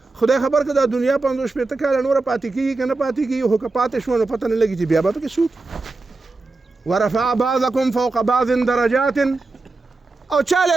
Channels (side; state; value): left; quieter; 3.5 dB